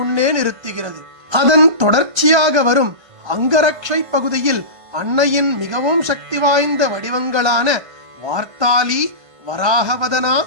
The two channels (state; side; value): late; left; 1.3 ms